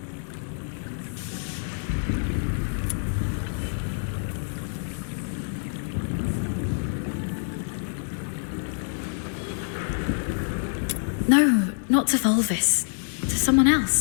No, not to Fulvis. To someone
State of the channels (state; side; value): silent; right; 61 dB below the other